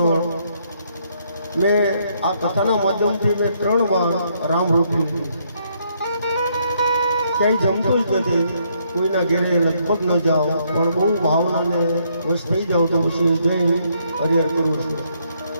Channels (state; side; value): inverted; both; correlation -0.72